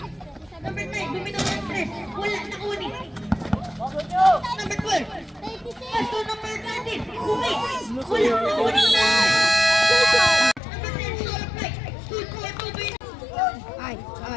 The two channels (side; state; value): right; drops out; at 10.6 s